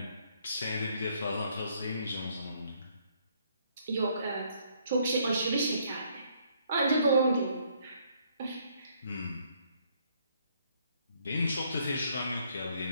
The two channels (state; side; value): inverted; both; correlation -0.67